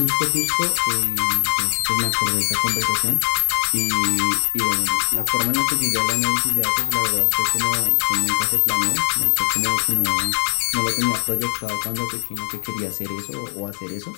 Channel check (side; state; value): right; silent; 65 dB below the other